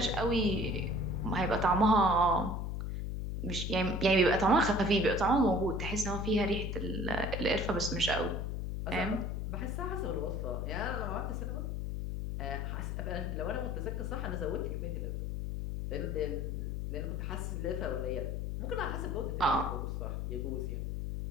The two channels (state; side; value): noise; left; hum, 2 dB below the sound